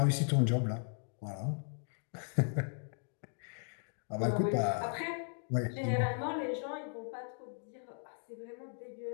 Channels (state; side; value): silent; right; 53 dB below the other